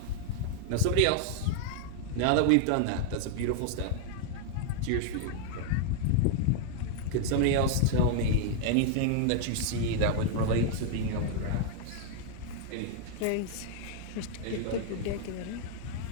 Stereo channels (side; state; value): both; different; correlation 0.00